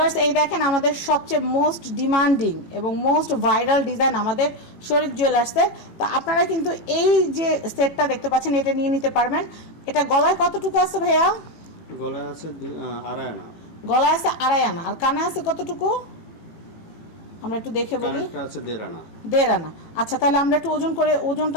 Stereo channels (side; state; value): right; late; 18 ms